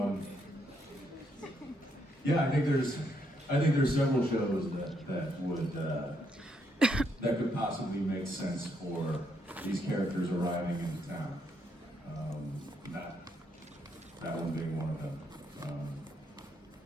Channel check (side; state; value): both; normal; correlation 0.76